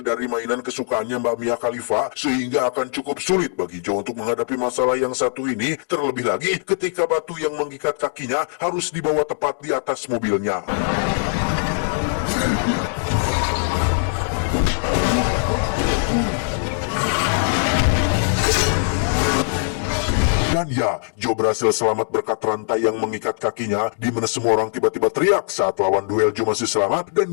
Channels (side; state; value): right; silent; 65 dB below the other